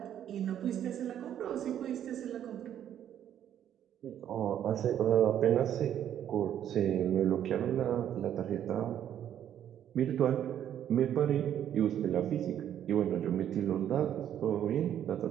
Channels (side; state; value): left; quieter; 10.3 dB